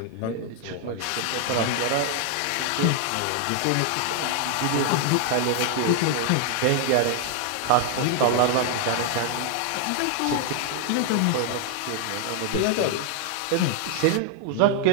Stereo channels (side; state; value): both; different; correlation 0.00